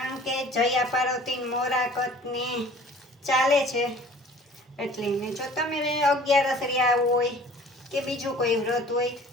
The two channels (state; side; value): normal; both; correlation 0.49